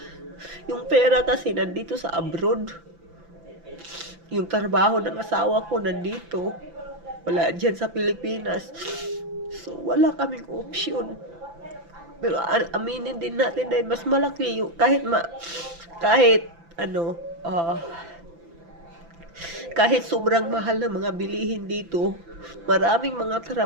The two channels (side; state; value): left; late; 5.9 ms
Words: yung pera kasi nandito sa abroad. Yung trabaho ng asawa ko nandito. Wala dyan sa Pilipinas. So, wala kaming option. Pero aminin din natin dahil mas malaki yung kahit sobrang mahal na mga bilihin dito, maraming mga